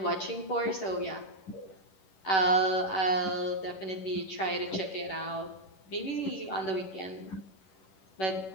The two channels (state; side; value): late; right; 11 ms